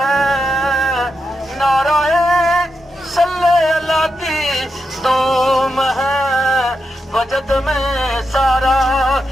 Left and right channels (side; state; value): both; normal; correlation 0.86